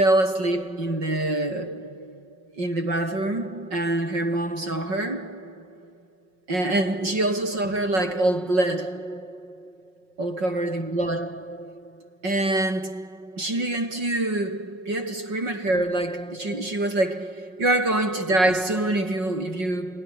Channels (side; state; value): left; late; 5.5 ms